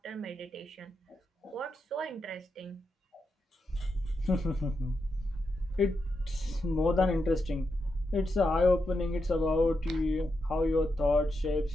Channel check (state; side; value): normal; both; correlation 0.85